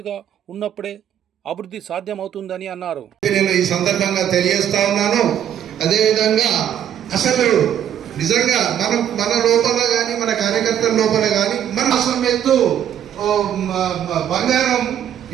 ఉన్నప్పుడే అభివృద్ధి సాధ్యమవుతుందని అన్నారు. నేను ఈ సందర్భంగా తెలియజేస్తా ఉన్నాను. అదేవిధంగా అసలు నిజంగా మన లోపల కానీ మన కార్యకర్తల లోపల కానీ మన అసలు బంగారం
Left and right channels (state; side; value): quieter; left; 10.0 dB